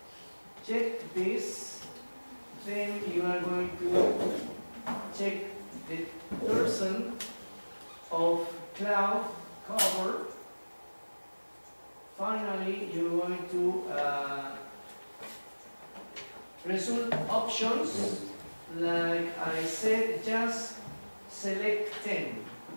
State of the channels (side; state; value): both; inverted; correlation -1.00